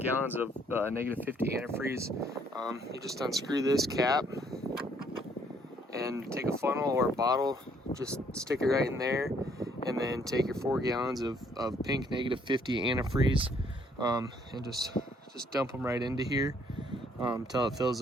of -50 antifreeze. You just unscrew this cap and take a funnel or a bottle, just stick it right in there, and then take your 4 gallons of pink -50 antifreeze, and just dump them right into here until it fills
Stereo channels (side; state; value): both; normal; correlation 0.66